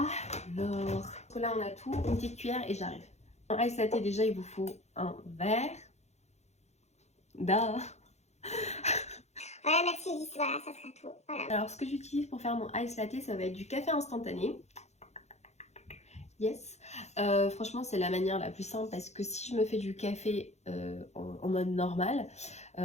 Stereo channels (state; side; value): late; right; 0.32 ms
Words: là, on a tout, une petite cuillère et j'arrive. En ice latte, déjà, il vous faut un verre. Duh. Voilà, merci Lys, voilà, ça sera tout. Voilà. Alors, ce que j'utilise pour faire mon ice latte, ça va être du café instantané. Yes. Franchement, c'est la manière la plus simple parce que si je me fais du café en mode normal,